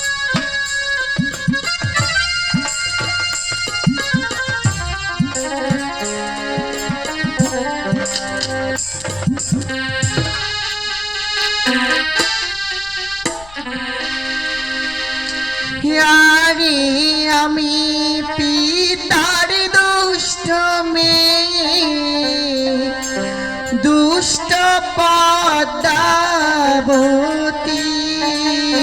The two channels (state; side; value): noise; left; rumble, 20 dB below the sound